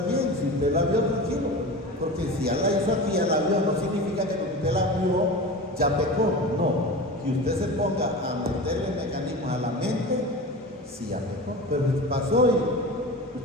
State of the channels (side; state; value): both; normal; correlation 0.31